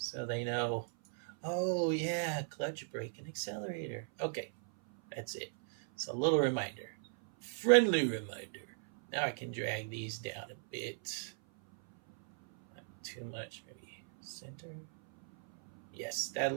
they know, oh yeah, clutch, brake, and accelerator. Okay, that's it. It's a little reminder, friendly reminder. Now I can drag these down a bit. Not too much, maybe center. Yes, that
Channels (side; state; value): left; silent; 53 dB below the other